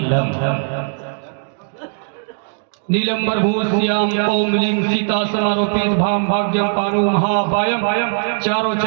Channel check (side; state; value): left; silent; digital silence